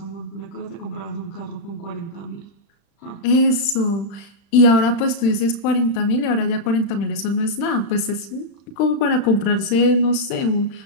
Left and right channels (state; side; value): late; right; 35 ms